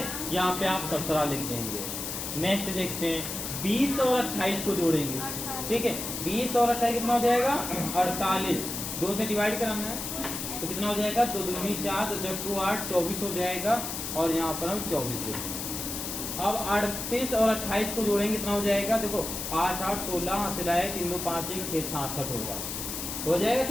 यहाँ पे आप 17 लिख देंगे। नेक्स्ट देखते हैं 20 और 28 को जोड़ेंगे, ठीक है। 20 और 28 कितना हो जाएगा 48। 2 से डिवाइड कराना है तो कितना हो जाएगा, 2 दूनी 4, 2 चक्कू 8, 24 हो जाएगा। और यहाँ पर हम 24 देखेंगे। अब 38 और 28 को जोड़ेंगे, कितना हो जाएगा, देखो 8, 8, 16 सिलाए 3, 2, 5, 1, 6, 66 होगा, हो जाएगा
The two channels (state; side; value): noise; left; hiss, 5 dB below the sound